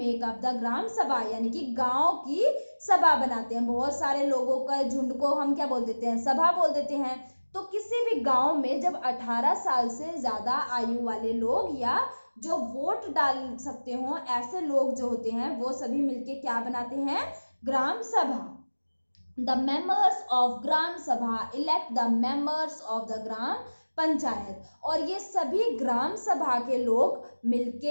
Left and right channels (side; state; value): both; inverted; correlation -1.00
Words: अप द ग्राम सभा, यानी कि गांव की सभा बनाते हैं। बहुत सारे लोगों का झुंड को हम क्या बोल देते हैं, सभा बोल देते हैं। तो किसी भी गांव में जब 18 साल से ज्यादा आयु वाले लोग या जो वोट डाल सकते हो ऐसे लोग जो होते हैं, वो सभी मिलके क्या बनाते हैं, ग्राम सभा। The members of gram sabha elect the members of the gram panchayat, और ये सभी ग्राम सभा के लोग